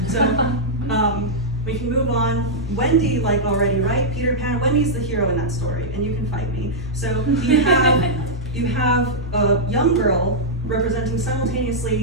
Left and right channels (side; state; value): both; normal; correlation -0.08